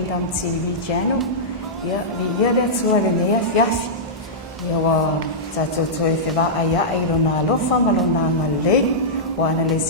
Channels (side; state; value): both; normal; correlation -0.12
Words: TV channel. Ia li ia le atua le nea fiafi. Ia wa tatou toe whewa aia ai rona alofa malona ngalei. Wa ana le